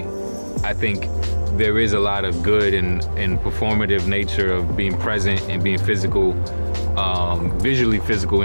I think there is a lot of good and performative nature of being present and being physical, visually physical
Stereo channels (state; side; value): inverted; both; correlation -1.00